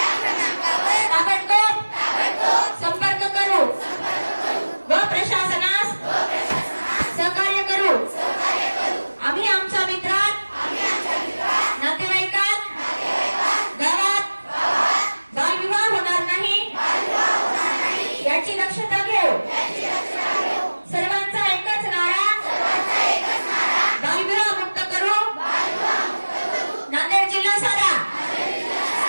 ताबडतोब संपर्क करू व प्रशासनास सहकार्य करू. आम्ही आमच्या मित्रात नातेवाईकात गावात बालविवाह होणार नाही याची दक्षता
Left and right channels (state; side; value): inverted; both; correlation -1.00